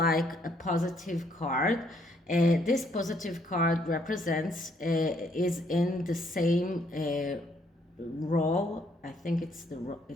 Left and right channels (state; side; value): normal; both; correlation 0.69